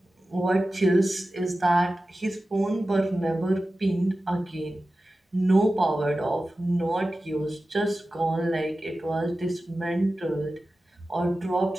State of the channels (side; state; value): both; normal; correlation 0.94